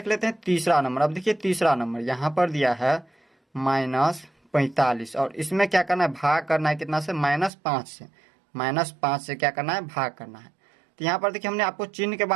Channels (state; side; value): drops out; left; at 7.5 s